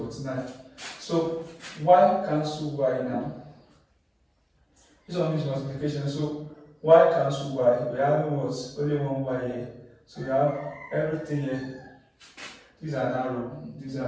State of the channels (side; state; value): both; identical; correlation 1.00